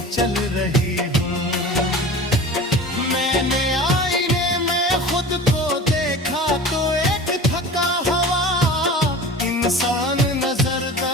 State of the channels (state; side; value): normal; both; correlation 0.37